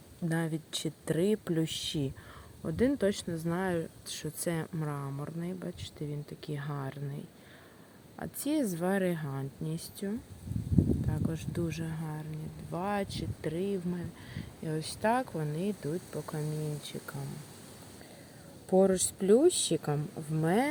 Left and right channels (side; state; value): both; identical; correlation 1.00